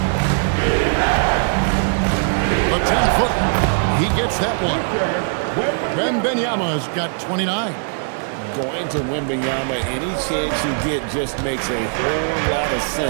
The 10-foot. He gets that one. Wembanyama's got 29. Going to Wembanyama, any chance you get just makes a whole lot of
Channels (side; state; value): left; silent; digital silence